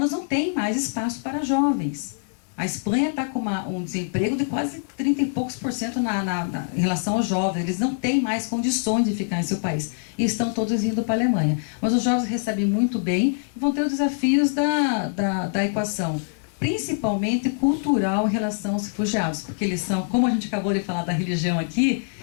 não tem mais espaço para jovens. A Espanha está com um desemprego de quase 30 e poucos % em relação aos jovens. Eles não têm mais condições de ficar em seu país. E estão todos indo para a Alemanha. Mas os jovens recebem muito bem e vão ter os desafios da equação, principalmente cultural em relação aos refugiados. Porque eles são, como a gente acabou de falar da religião aqui,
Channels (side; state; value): right; silent; digital silence